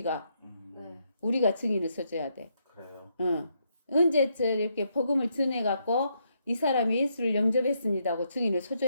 네. 우리가 증인을 서줘야 돼. 그래요. 언제 저 이렇게 복음을 전해갖고 이 사람이 예수를 영접했습니다 하고 증인을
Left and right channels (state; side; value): inverted; both; correlation -0.76